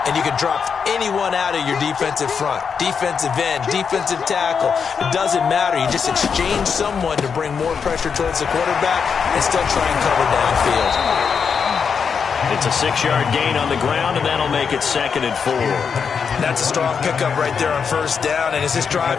And you can drop anyone out of your defensive front, defensive end, defensive tackle. It doesn't matter. You just exchange someone to bring more pressure towards the quarterback and still try and cover downfield. It's a 6-yard gain on the ground, and that'll make it second and 4. That's a strong pickup right there on first down. And as this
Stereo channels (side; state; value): right; quieter; 6.3 dB